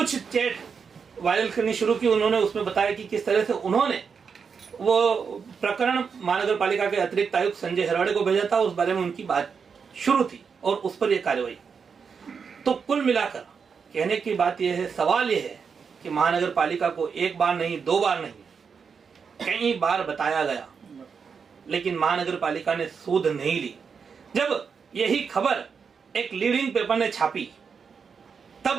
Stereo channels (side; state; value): left; quieter; 6.0 dB